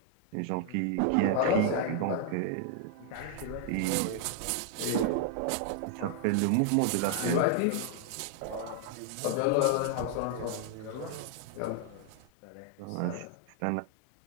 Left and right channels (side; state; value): both; different; correlation 0.00